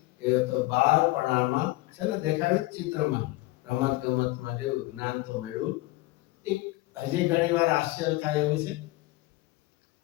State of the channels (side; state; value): right; quieter; 19.8 dB